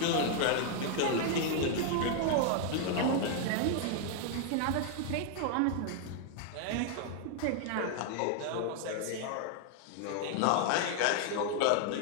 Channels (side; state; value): both; different; correlation 0.00